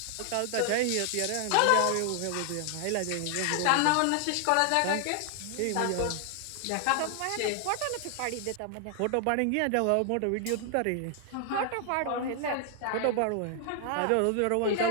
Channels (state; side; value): different; both; correlation 0.00